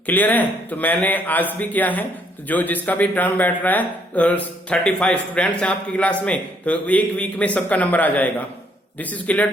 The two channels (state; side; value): normal; both; correlation 0.68